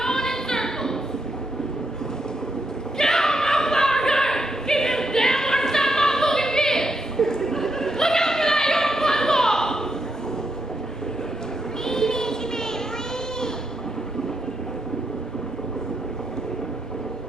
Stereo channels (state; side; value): normal; both; correlation 0.80